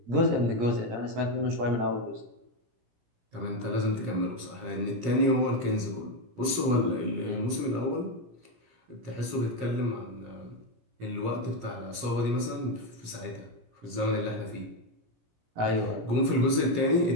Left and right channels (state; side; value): late; left; 17 ms